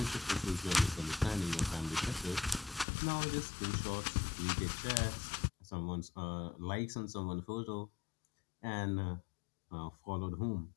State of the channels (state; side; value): drops out; right; at 2.9 s